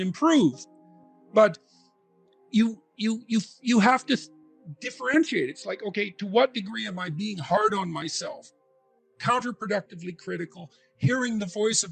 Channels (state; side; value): identical; both; correlation 1.00